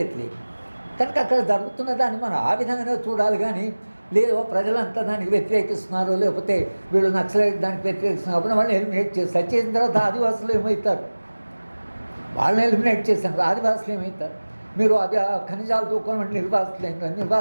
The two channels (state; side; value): inverted; both; correlation -1.00